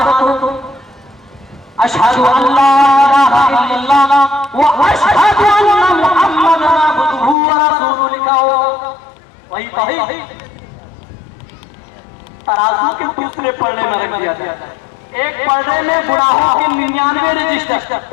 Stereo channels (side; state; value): right; drops out; at 7.4 s